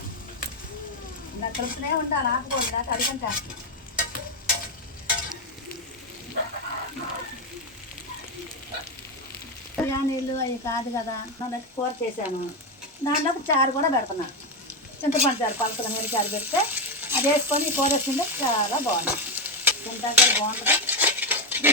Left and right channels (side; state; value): both; normal; correlation 0.08